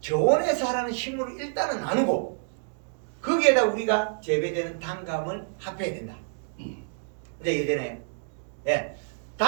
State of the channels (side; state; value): left; silent; digital silence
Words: 저온에 자라는 식물을 일단은 나누고 거기에다 우리가 재배되는 단감을 합해야 된다. 이제 이해되나요? 네.